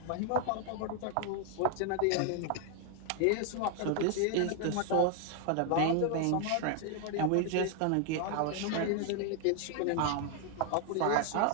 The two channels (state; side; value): different; both; correlation 0.00